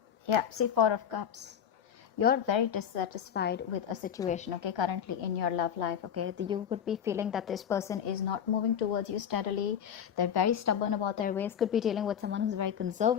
Yeah, see, Four of Cups. You're very dissatisfied with a situation, okay, currently in your love life, okay? You could be feeling that this person is not moving towards you steadily. They're very stubborn about their ways. Could be dealing with someone who's very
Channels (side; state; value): right; quieter; 8.6 dB